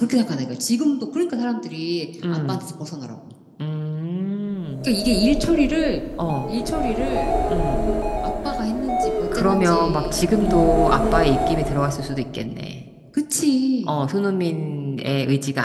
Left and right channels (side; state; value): both; identical; correlation 1.00